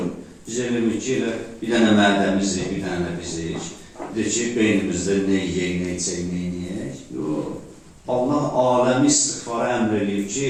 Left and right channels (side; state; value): both; identical; correlation 1.00